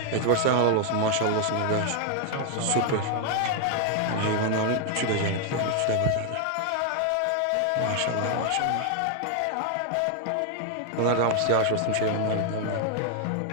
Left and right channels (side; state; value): both; different; correlation 0.00